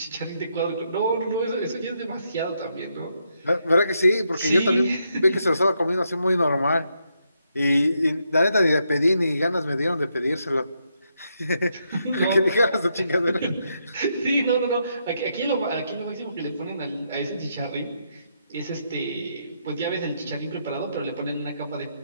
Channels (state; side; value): inverted; both; correlation -0.79